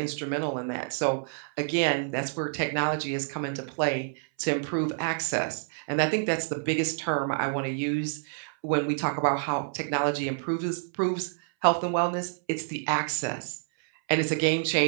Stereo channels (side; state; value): left; silent; 59 dB below the other